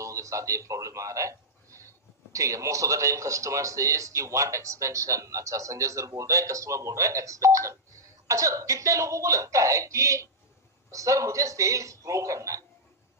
के साथ ये प्रॉब्लम आ रहा है। ठीक है, most of the time customer says कि वांट एक्सपेंशन। अच्छा, संजय सर बोल रहे हैं, कस्टमर बोल रहा है एक्सपेंशन। अच्छा, कितने लोगों को लगता है कि सर मुझे सेल्स ग्रो करना है,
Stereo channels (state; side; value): normal; both; correlation -0.08